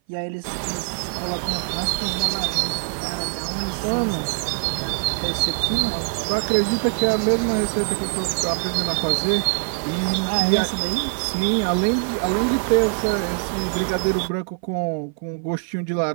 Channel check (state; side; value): silent; left; 57 dB below the other